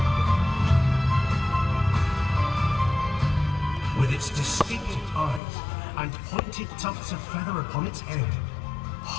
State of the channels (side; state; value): right; drops out; at 5.4 s